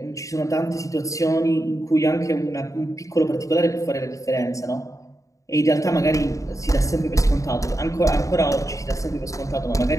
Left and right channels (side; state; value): right; late; 0.16 ms